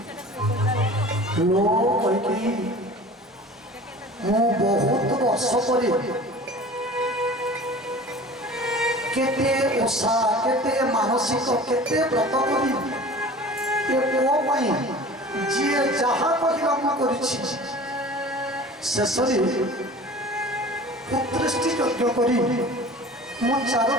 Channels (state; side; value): normal; both; correlation 0.41